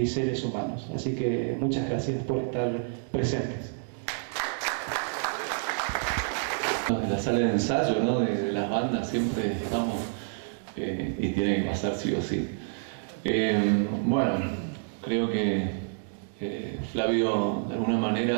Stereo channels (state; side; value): silent; left; digital silence